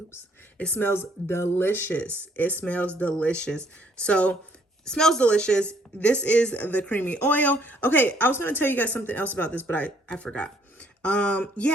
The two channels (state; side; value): normal; both; correlation 0.65